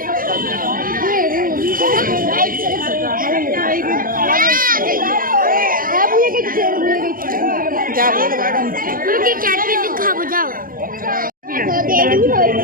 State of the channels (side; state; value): left; late; 0.41 ms